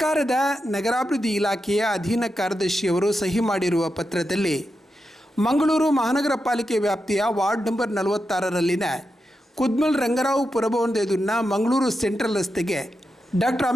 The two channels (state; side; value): normal; both; correlation 0.88